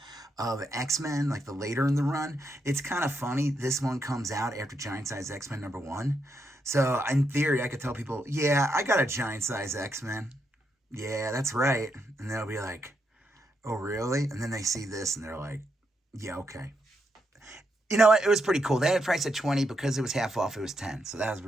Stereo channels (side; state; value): both; normal; correlation 0.81